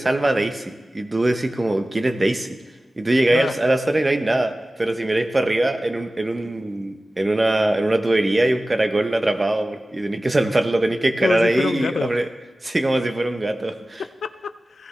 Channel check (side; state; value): both; normal; correlation 0.96